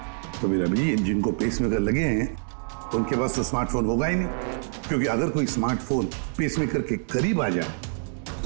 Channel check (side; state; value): left; silent; digital silence